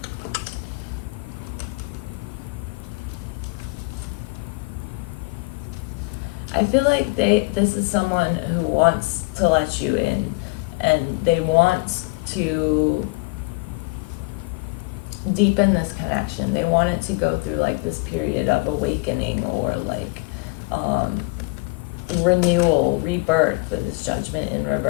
I feel like this is someone who wants to let you in, and they want to deepen this connection. They want it to go through like this period of awakening or like renewal, rebirth, with this Judgment in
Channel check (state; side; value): quieter; right; 26.2 dB